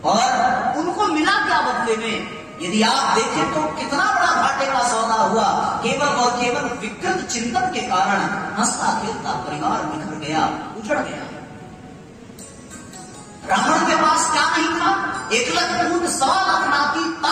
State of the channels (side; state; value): both; identical; correlation 1.00